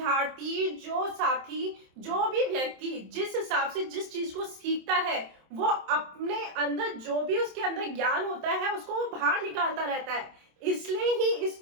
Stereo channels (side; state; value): left; late; 27 ms